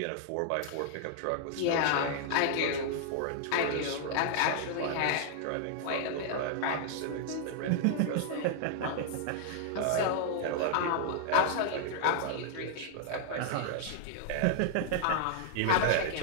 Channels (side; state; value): both; different; correlation -0.01